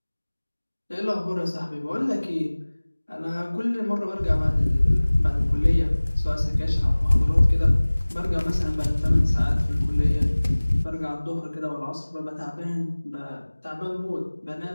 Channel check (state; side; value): inverted; both; correlation -1.00